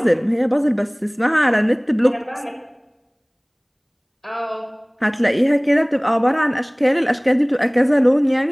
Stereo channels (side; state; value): both; identical; correlation 1.00